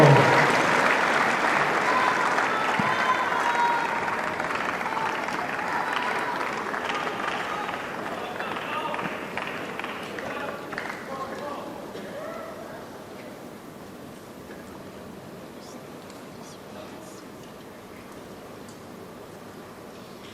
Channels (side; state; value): both; identical; correlation 1.00